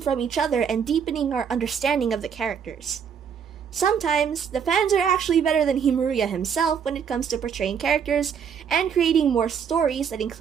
from each other and deepening our understanding of the characters. Sometimes, the fans are actually better than Himuruya himself when it comes to portraying characters and creating more stories that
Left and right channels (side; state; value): left; quieter; 7.3 dB